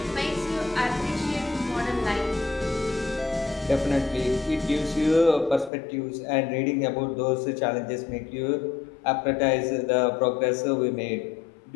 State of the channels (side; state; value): right; drops out; at 5.7 s